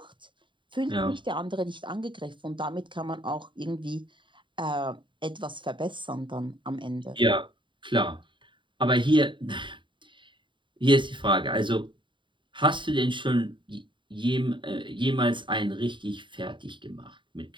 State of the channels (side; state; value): left; late; 0.23 ms